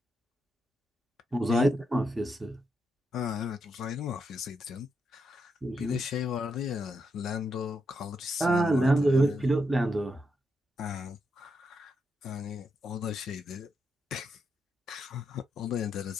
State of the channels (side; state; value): both; normal; correlation 0.82